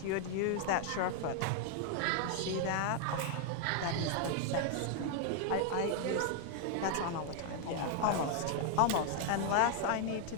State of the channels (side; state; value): both; different; correlation 0.00